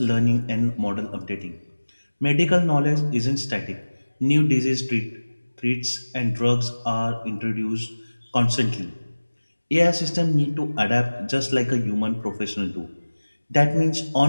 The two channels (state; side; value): inverted; both; correlation -1.00